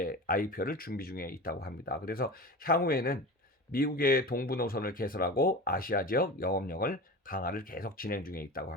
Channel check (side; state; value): both; normal; correlation 0.31